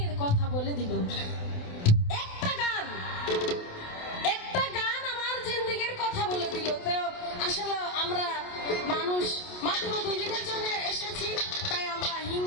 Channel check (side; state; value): right; late; 28 ms